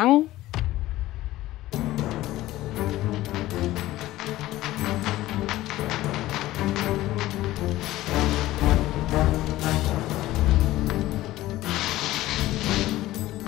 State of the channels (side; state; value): right; quieter; 16.2 dB